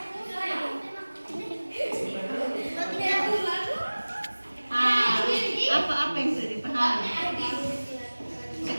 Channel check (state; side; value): inverted; both; correlation -1.00